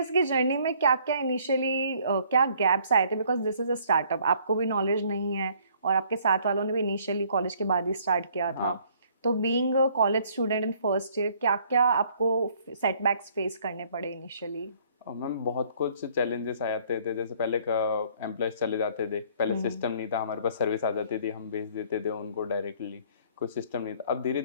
की जर्नी में क्या क्या इनिशियली क्या गैप्स आए थे? Because this is a startup, आपको भी नॉलेज नहीं है और आपके साथ वालों ने भी इनिशियली कॉलेज के बाद ही स्टार्ट किया था। तो being a college student in first year, क्या-क्या आपको सेटबैक्स फेस करने पड़े इनिशियली? और मैम बहुत कुछ चैलेंजेस आ जाते थे, जैसे पहले का एम्प्लॉयज़ चले जाते थे, पहले हुँ, सिस्टम नहीं था, हमारे पास सर्विस आ जाती थी, हम भेज देते थे उनको डायरेक्टली, कोई सिस्टम नहीं था। अब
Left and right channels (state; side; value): inverted; both; correlation -0.61